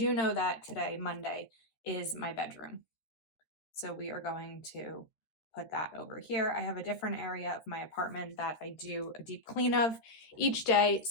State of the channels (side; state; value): right; late; 13 ms